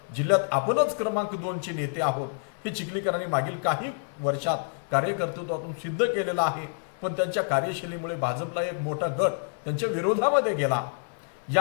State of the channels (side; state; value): right; silent; 60 dB below the other